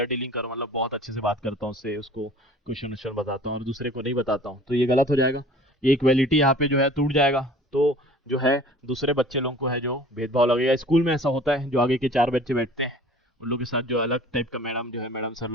डीलिंग करूँ, मतलब बहुत अच्छे से बात करता हूँ उससे, उसको क्वेश्चन वोश्चन बताता हूँ और दूसरे को नहीं बताता हूँ, तो ये गलत हो जाएगा, ये इक्वालिटी यहाँ पे जो है टूट जाएगा। तो जो है दूसरे बच्चे लोगों को है जो भेदभाव लगेगा। स्कूल में ऐसा होता है, जो आगे के 4 बच्चे बैठते हैं उन लोग के साथ जो अलग टाइप का मैडम जो है, मैडम सर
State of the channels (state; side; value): normal; both; correlation 0.47